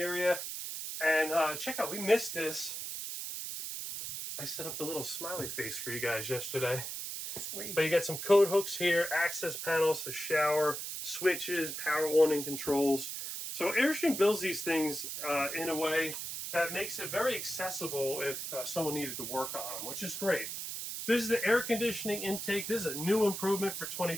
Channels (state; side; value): noise; right; hiss, 6 dB below the sound